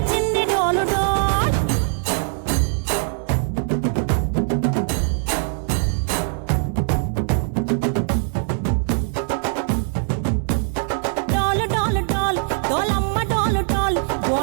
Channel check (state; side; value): silent; left; 60 dB below the other